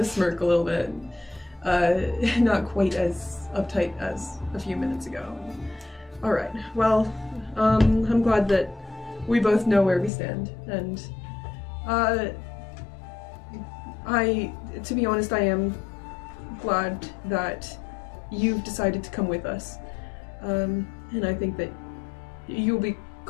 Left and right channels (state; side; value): drops out; right; at 10.1 s